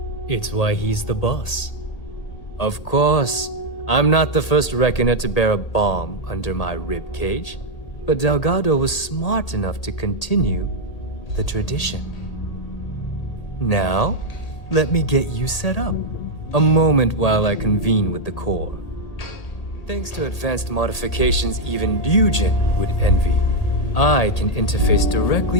It's why he's the boss. Of course, I'm not the first reckoner to bear a bomb under my rib cage, but Delgado was smart enough to continue the tradition. Now, let me get you set up. A moment while I convene with the core. Thanks to advanced modifications even Ryujin would envy, I can interface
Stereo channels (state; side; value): late; right; 1.8 ms